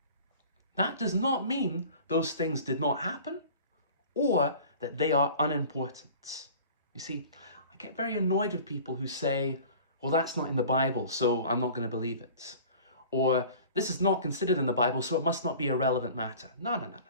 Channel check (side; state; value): both; inverted; correlation -0.43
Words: That does not mean those things did not happen or that they are unimportant. You see, I get very annoyed with people who say, well, that's not in the Bible, so I'm not going to believe it. Or this is not considered in the Bible, so it must not be a relevant matter. No.